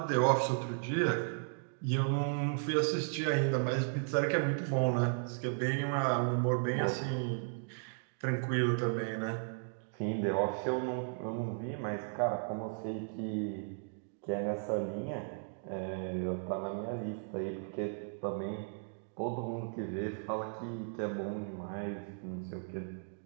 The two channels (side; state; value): left; silent; digital silence